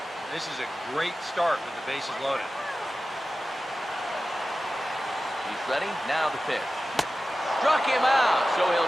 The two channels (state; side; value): normal; both; correlation 0.95